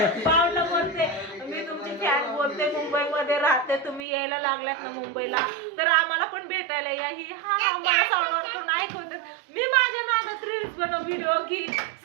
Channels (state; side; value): drops out; left; at 4.0 s